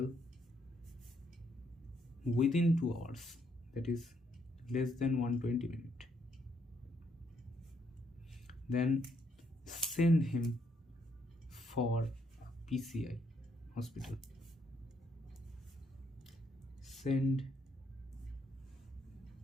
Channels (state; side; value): normal; both; correlation 0.73